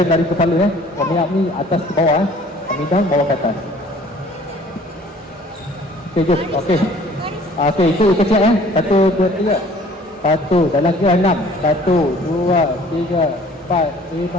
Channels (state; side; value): normal; both; correlation 0.53